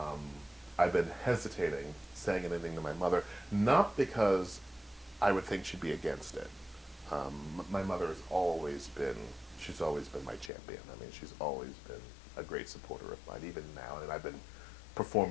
I've been hesitating saying anything to my mother, not because I would think she'd be against it. My mother has she's always been my champion. I mean, she's always been a great supporter of mine, even now. And I've been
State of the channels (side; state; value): right; drops out; at 10.5 s